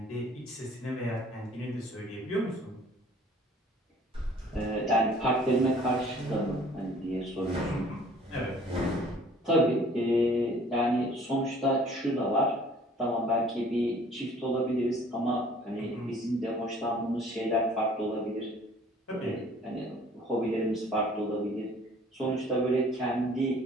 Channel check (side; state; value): both; normal; correlation 0.53